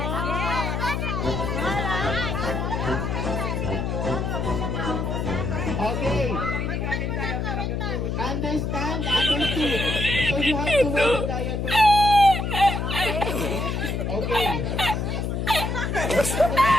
Okay. Understand? Understood. So you have to wear the diaper. Okay.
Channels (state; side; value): noise; left; hum, 1 dB below the sound